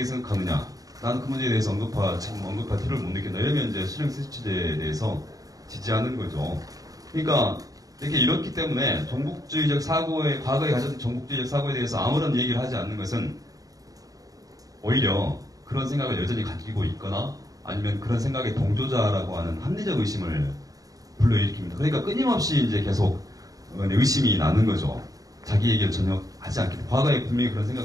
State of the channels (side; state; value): left; late; 0.17 ms